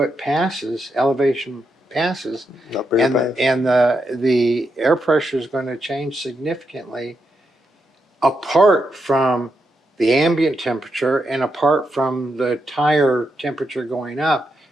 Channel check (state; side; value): normal; both; correlation 0.83